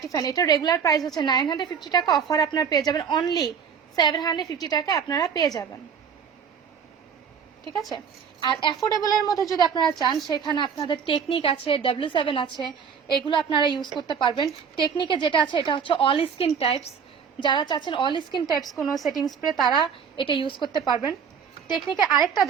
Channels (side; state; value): left; quieter; 6.9 dB